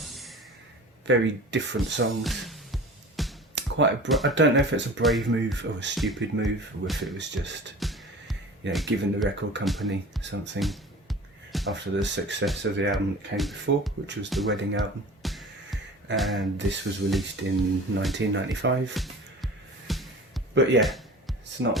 very different songs. I don't know if it's a brave move or a stupid move, or if it was just, you know, giving the record company something after the success of the album that came before, which was the Wedding album, and this was released in 1995. But yeah, it's not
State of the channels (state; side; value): normal; both; correlation 0.39